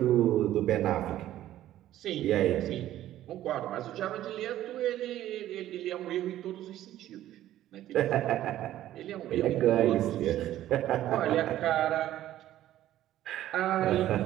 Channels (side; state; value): left; quieter; 13.2 dB